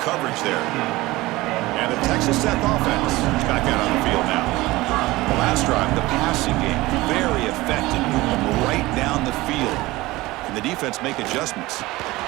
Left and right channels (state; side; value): quieter; left; 19.6 dB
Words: coverage there. And the Texas Tech offense is back out on the field now. The last drive, the passing game, very effective. Moving right down the field. And the defense make adjustments.